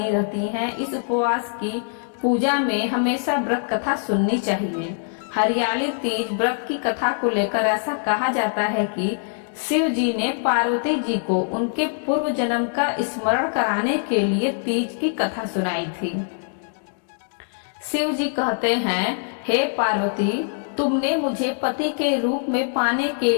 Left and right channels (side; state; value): right; silent; digital silence